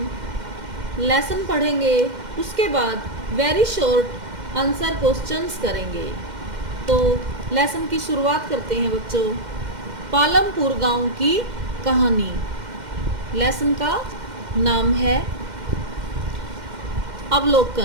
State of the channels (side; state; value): left; late; 2.1 ms